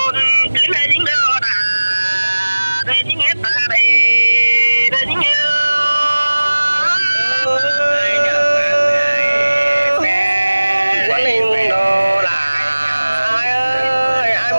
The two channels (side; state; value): both; inverted; correlation -1.00